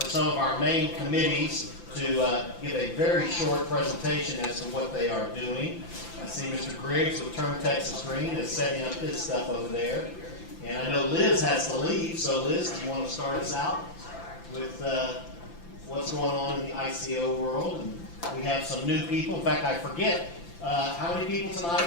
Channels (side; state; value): right; late; 5.9 ms